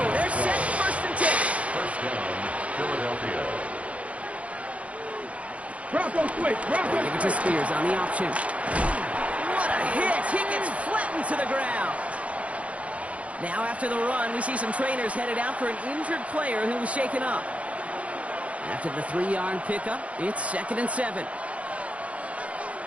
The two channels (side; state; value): left; late; 0.064 ms